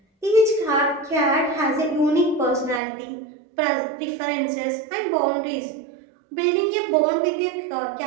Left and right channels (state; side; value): drops out; left; at 2.8 s